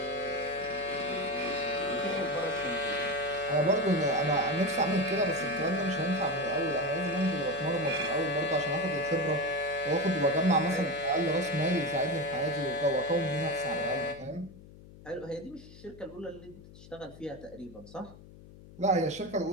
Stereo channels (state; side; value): noise; left; hum, 19 dB below the sound